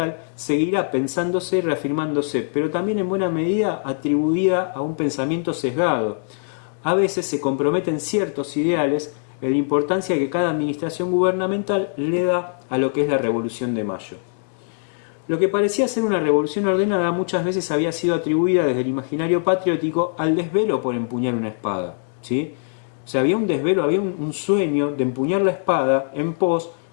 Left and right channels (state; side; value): silent; right; digital silence